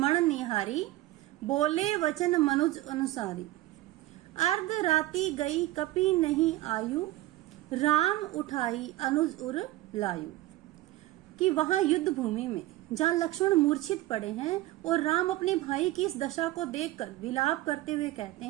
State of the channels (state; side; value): quieter; left; 17.0 dB